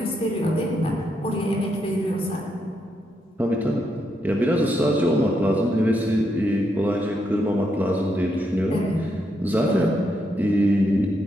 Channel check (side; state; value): both; normal; correlation 0.79